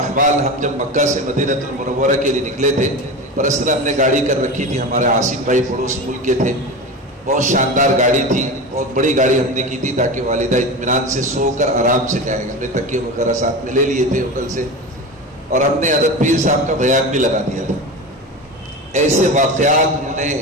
ہم جب مکہ سے مدینہ المنورہ کے لیے نکلے تھے، پرسنل ہم نے گاڑی کر رکھی تھی، ہمارے عاصم بھائی پڑوس ملک کے تھے، بہت شاندار گاڑی تھی، بہت بڑی گاڑی ہم نے کی تھی تاکہ والدہ اطمینان سے سو کر آرام سے جائیں۔ ہم نے تکیے وغیرہ ساتھ میں لے لیے تھے ہوٹل سے، اور ہم نے حضرت پیر صاحب کا بیان بھی لگا دیا تھا۔ ایسے واقعات انہوں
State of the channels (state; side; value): normal; both; correlation 0.26